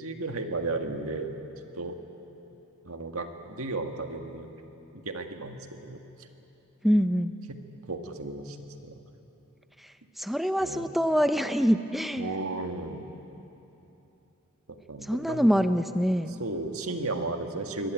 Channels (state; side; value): normal; both; correlation 0.74